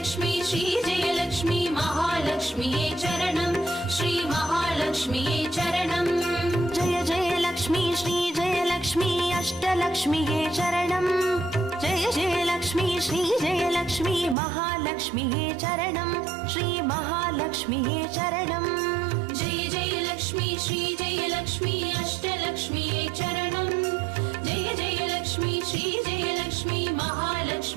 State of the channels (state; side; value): drops out; left; at 14.4 s